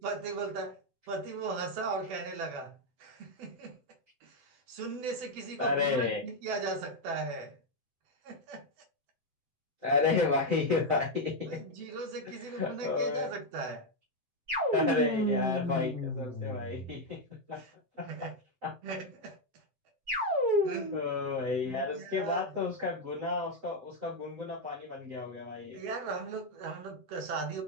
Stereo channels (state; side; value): late; left; 7.8 ms